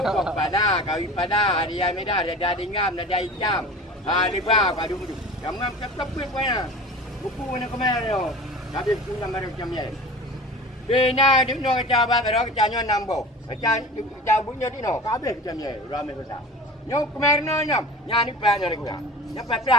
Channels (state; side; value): normal; both; correlation 0.38